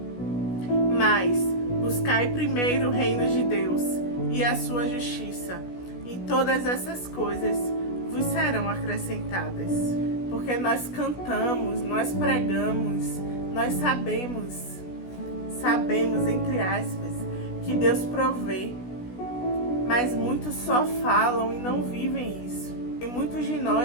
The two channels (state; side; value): late; right; 16 ms